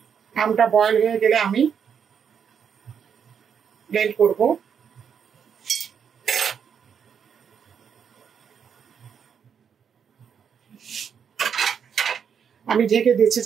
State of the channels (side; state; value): left; quieter; 7.4 dB